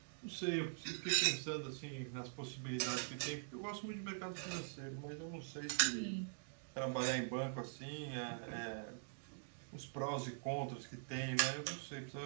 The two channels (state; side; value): silent; left; digital silence